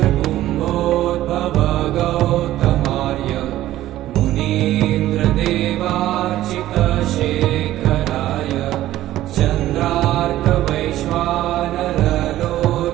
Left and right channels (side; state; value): left; quieter; 14.3 dB